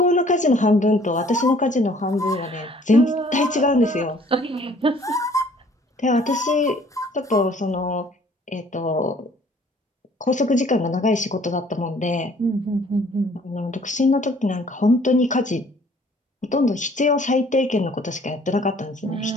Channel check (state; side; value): normal; both; correlation 0.57